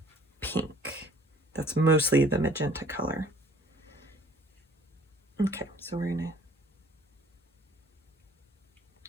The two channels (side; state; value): both; normal; correlation 0.54